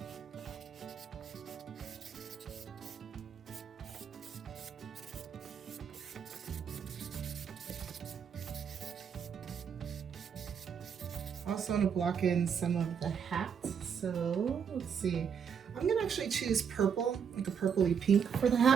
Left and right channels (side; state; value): left; quieter; 7.2 dB